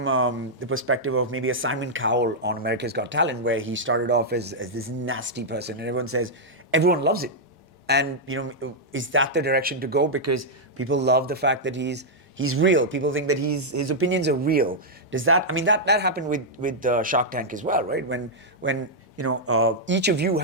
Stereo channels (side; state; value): both; normal; correlation -0.06